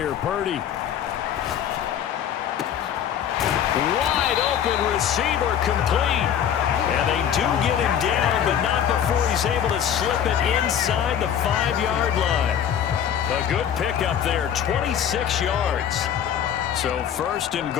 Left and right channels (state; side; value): quieter; right; 9.2 dB